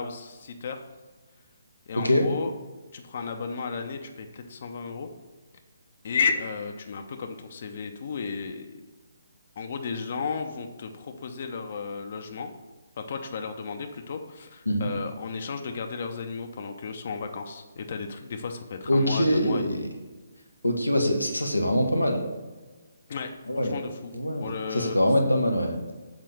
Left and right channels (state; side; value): inverted; both; correlation -0.82